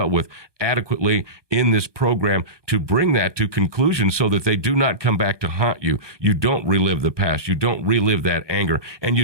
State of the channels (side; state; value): left; late; 1.2 ms